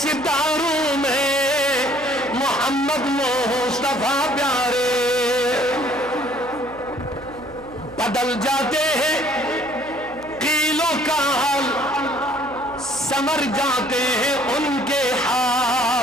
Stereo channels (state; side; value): noise; right; hum, 19 dB below the sound